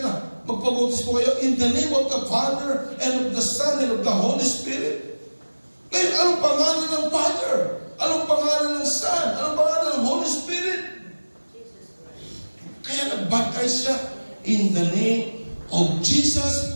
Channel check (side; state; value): both; inverted; correlation -1.00